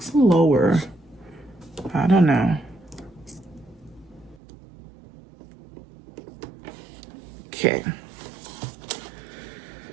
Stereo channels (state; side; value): drops out; left; at 4.4 s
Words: lower. I don't know. Okay.